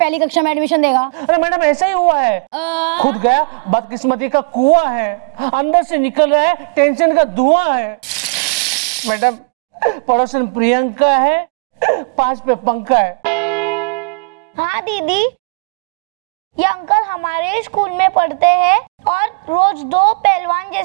कक्षा में एडमिशन देगा। अरे मैडम ऐसा ही हुआ है, खुद गया बदकिस्मती का कुआं है, अंदर से निकल रहा है टेंशन का धुआं है। मैडम पड़ोसन प्रियंका है, 5 पे पंखा है। हाँ दीदी, ये अंकल हमारे स्कूल में पढ़ते हैं और रोज 2 पहलवान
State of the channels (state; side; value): quieter; left; 34.5 dB